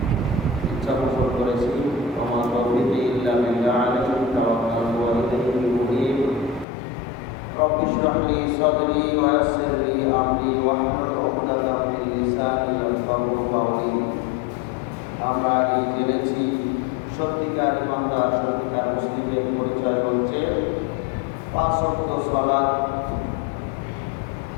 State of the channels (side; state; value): right; drops out; at 6.7 s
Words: ইচ্ছা পোষণ করেছি। ওমা তৌফিকি ইল্লা বিল্লাহ আলাইহি তাওয়াক্কালতু ওয়া ইলাইহি উনীব। রব্বি ইশরাহ লি সাদরি ওয়া ইয়াসসির লি আমরি ওয়াহলুল উকদাতাম মিন লিসানি ইয়াফকাহু কাওলি। আমরা আগে জেনেছি সত্যিকার ইমানদার, সত্যিকার মুসলিমের পরিচয় হচ্ছে পাঁচ ওয়াক্ত সালাত